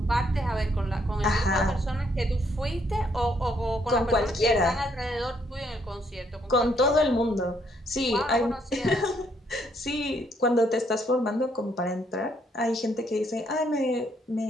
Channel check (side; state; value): both; normal; correlation 0.71